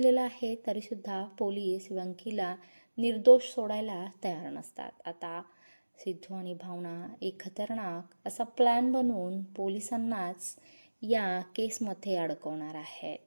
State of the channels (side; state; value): both; inverted; correlation -1.00